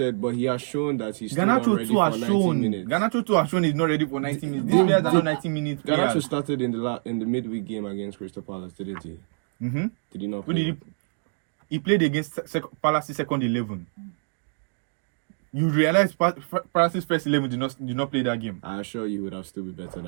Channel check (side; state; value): left; silent; digital silence